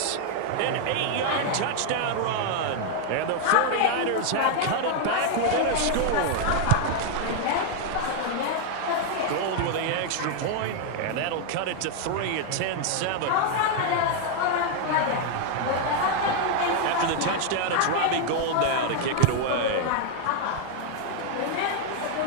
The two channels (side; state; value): both; different; correlation 0.00